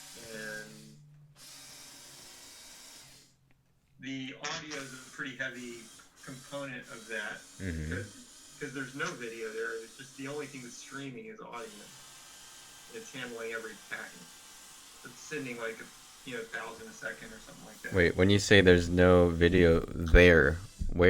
And the audio is a pretty heavy component of that because there's no video there. It's just the only thing that's streaming is audio. It's handling every packet. It's sending like 1,000 a second or something like that. Wait, when you say there's no video there,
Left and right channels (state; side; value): identical; both; correlation 1.00